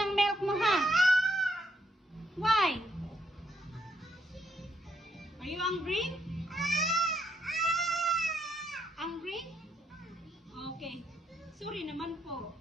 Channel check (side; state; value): both; normal; correlation 0.75